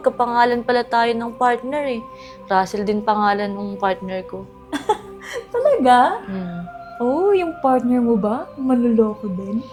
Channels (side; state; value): both; identical; correlation 1.00